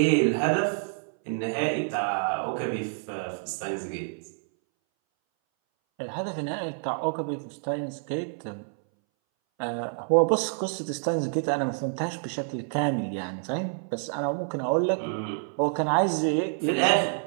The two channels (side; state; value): left; silent; 60 dB below the other